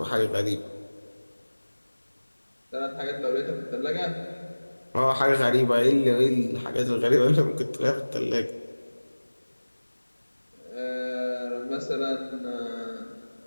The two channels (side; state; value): both; inverted; correlation -1.00